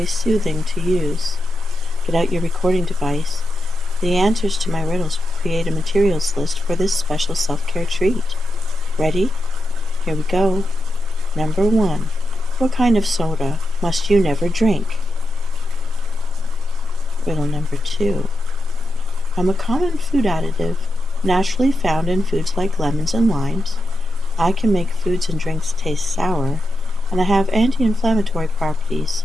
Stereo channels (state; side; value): normal; both; correlation 0.88